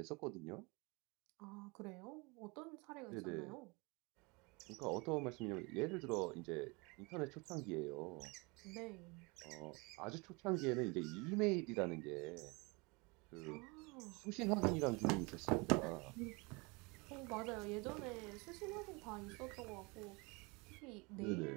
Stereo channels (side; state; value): left; quieter; 27.8 dB